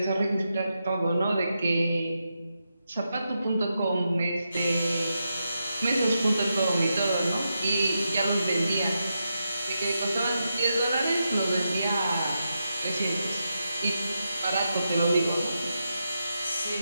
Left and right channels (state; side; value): inverted; both; correlation -0.86